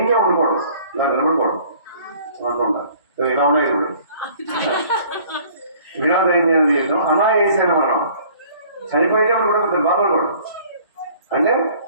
ఉండకూడదు. నాకు నిలబడకూడదు అనుకుంటా. ఇలా ఉన్నాయి ఇప్పుడు. వినా దైన్యమైన జీవితం అనాయాసైన మరణం. చనిపోయేటప్పుడు కూడా కొంచెం బాధపడకూడదు. అంటే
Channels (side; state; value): both; inverted; correlation -0.54